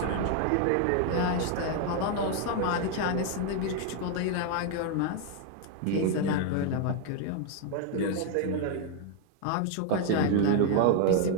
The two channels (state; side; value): different; both; correlation 0.00